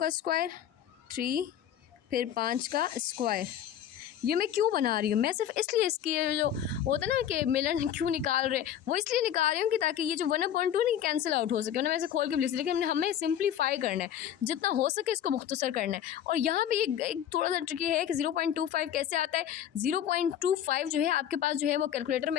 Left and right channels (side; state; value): right; quieter; 10.2 dB